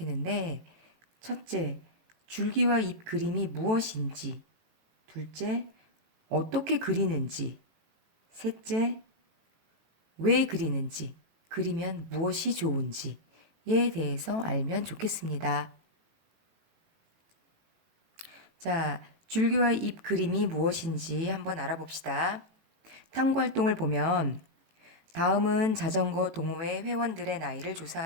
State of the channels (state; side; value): late; left; 18 ms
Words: 첫째, 줄기와 잎 그림이 무엇인지, 둘째, 어떻게 그리는지, 셋째, 왜 그리는지, 그리면 무엇이 좋은지에 대해서 알면 좋겠습니다. 자, 줄기와 잎 그림이 무엇인지 한번 알아봅시다. 탐구 활동을 보면 다음은 자전거 동호회 회원들의 나이를